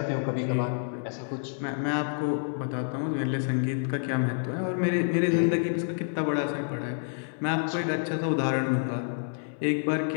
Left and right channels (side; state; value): right; silent; 59 dB below the other